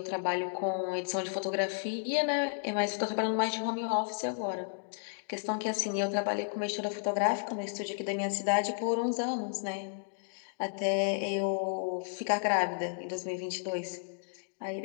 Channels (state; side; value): silent; right; digital silence